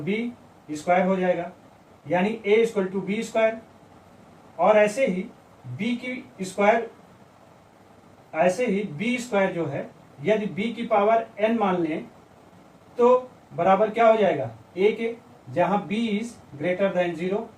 स्क्वायर हो जाएगा, यानी a equal to B square. और ऐसे ही b की स्क्वायर, ऐसे ही b स्क्वायर जो है, यदि b की पावर n मान लें तो बराबर क्या हो जाएगा a के, जहां b इज ग्रेटर देन 0।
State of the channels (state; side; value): identical; both; correlation 1.00